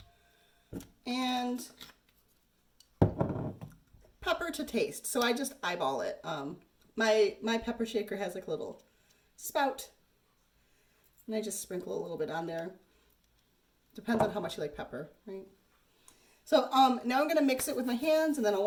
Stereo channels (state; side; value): identical; both; correlation 1.00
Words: And pepper to taste. So I just eyeball it. My pepper shaker has like a little spout, and I just sprinkle a little bit on there. Depends on how much you like pepper, right? So now I'm gonna mix it with my hands, and then I'll